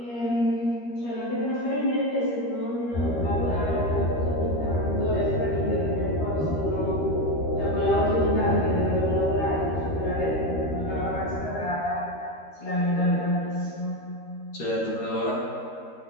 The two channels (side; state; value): right; late; 13 ms